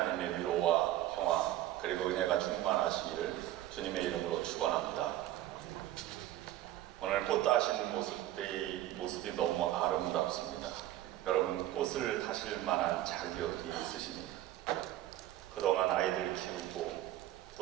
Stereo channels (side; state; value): left; quieter; 13.9 dB